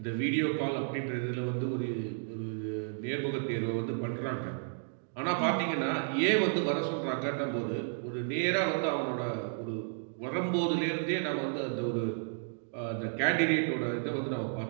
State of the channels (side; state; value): left; silent; digital silence